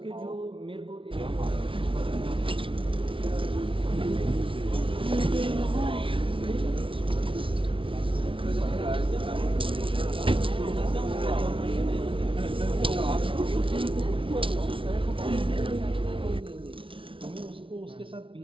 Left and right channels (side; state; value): left; late; 0.25 ms